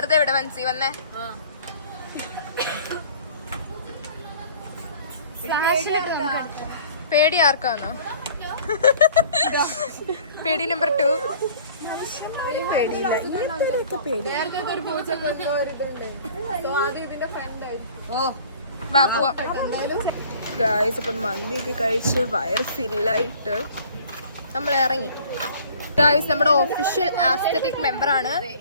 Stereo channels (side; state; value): both; inverted; correlation -0.50